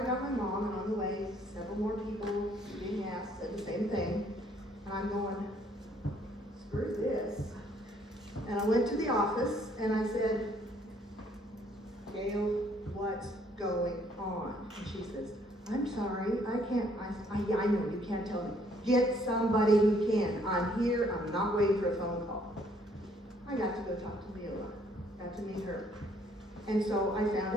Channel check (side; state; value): both; normal; correlation 0.64